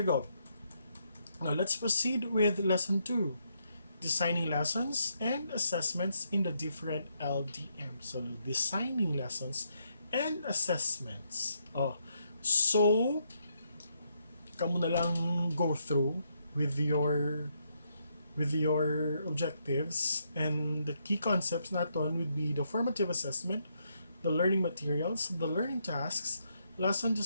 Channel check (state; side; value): inverted; both; correlation -0.77